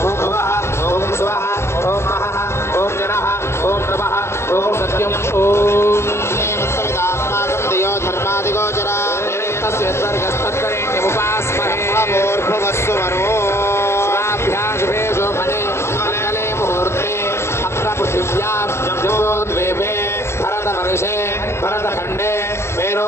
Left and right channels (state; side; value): late; right; 0.13 ms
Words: ఓం భువః, ఓం స్వః, ఓం మహః, ఓం జనః, ఓం నమః, ఓం సత్యం. ఓం శ్రీమత్సవితాస్మాకం దియో ధర్మాదిగోచర తస్య స్వర్గస్తత్కరేణ్యముపాస్మహే. భూర్భువస్సు వరో శుభాభ్యాం శుభే శోభనే మంగళే ముహూర్తే అత్ర పృథివ్యాం జంబోద్వీపే భరతవర్షే భరతఖండే